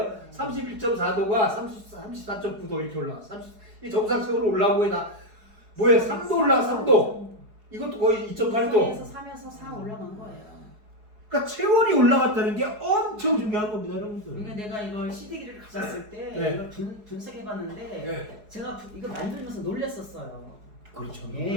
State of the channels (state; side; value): late; left; 4.8 ms